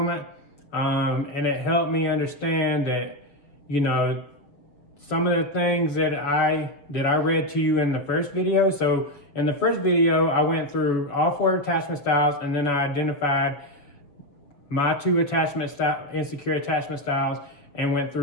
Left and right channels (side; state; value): right; late; 6.7 ms